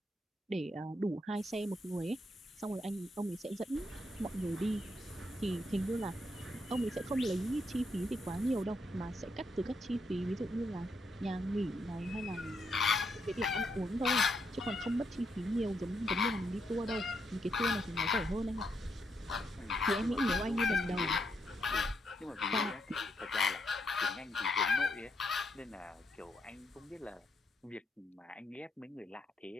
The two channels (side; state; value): both; normal; correlation 0.78